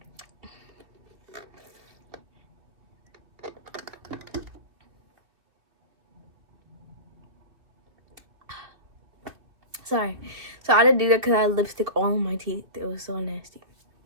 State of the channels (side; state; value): left; late; 2.4 ms